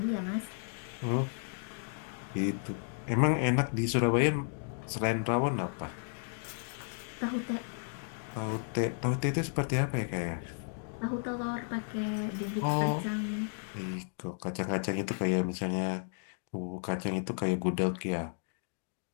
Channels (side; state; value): right; silent; 55 dB below the other